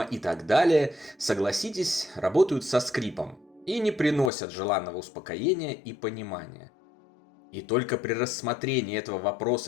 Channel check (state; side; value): drops out; right; at 4.3 s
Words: и так далее, согласитесь, работают со скрипом и не приносят желанного успокоения и понимания. И только при рассмотрении этого